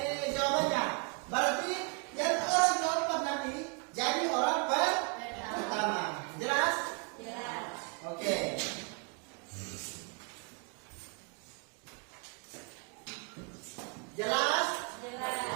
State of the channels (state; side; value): quieter; left; 34.3 dB